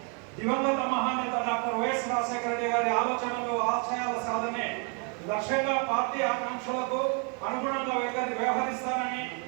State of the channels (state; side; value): quieter; left; 35.2 dB